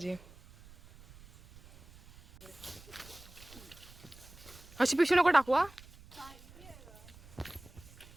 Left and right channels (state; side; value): noise; right; rumble, 21 dB below the sound